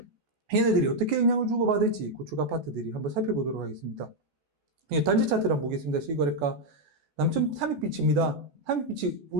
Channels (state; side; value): late; left; 14 ms